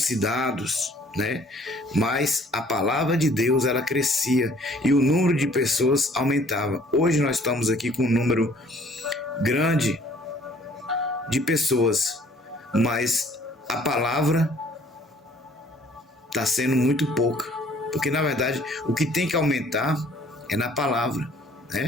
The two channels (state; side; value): normal; both; correlation 0.57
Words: né? Mas a palavra de Deus, ela crescia e o número de pessoas aumentava. Hoje nós estamos aqui com um número grande de pessoas, mas a palavra está sendo muito pouca, porque na verdade o que tem que aumentar é na palavra,